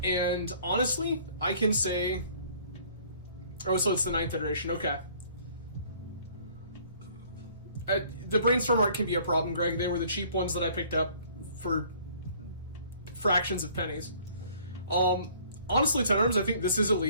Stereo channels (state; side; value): inverted; both; correlation -0.56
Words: honestly, I can say... Oh, so it's the 9th iteration, okay. The Brainstorm art can be a problem, Greg. They were the cheap ones that I picked up for fractions of pennies. Honestly, Ten Arms, I think this is a